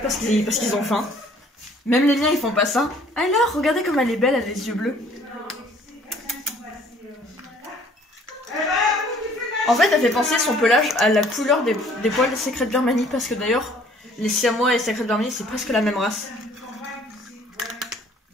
parce qu'ils ont faim. Même les miens, ils font pas ça. Alors, regardez comme elle est belle, elle a les yeux bleus. En fait, elle fait penser son pelage à la couleur des poils des secrets de Birmanie. Parce que d'ailleurs, les siamois et les secrets de Birmanie, c'est presque la même race.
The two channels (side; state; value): both; normal; correlation 0.57